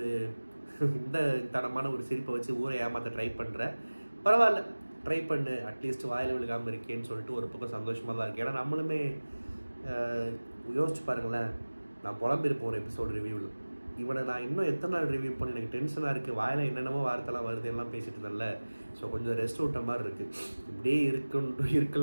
இந்த தனமான ஒரு சிரிப்பை வச்சு ஊரை ஏமாற்ற ட்ரை பண்ணுற. பரவாயில்ல, ட்ரை பண்ணு, அட்லீஸ்ட் வாயில் விழுகாமல் இருக்கேன்னு சொல்லிட்டு ஒரு பக்கம் சந்தோஷமாக தான் இருக்குது. ஏன்னா நம்மளுமே யோசிச்சு பாருங்களேன், நான் புலம்பிருப்போம் ஒரு எபிசோடு ரிவ்யூவில். இவனை நான் இன்னும் எத்தனை நாள் ரிவ்யூ பண்ணி எனக்கு டென்ஷனாக இருக்குது, வாயில் என்னென்னமோ வார்த்தைலாம் வருது எல்லாம் பேசிட்டு இருந்தேன்ல. ஸோ கொஞ்சம் ரெஸ்ட் விட்ட மாதிரி இருக்குது. இப்படியே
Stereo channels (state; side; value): inverted; both; correlation -1.00